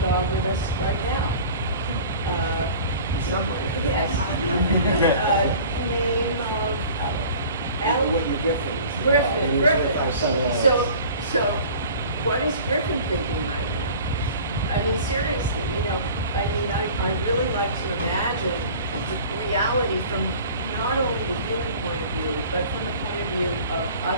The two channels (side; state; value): both; inverted; correlation -0.43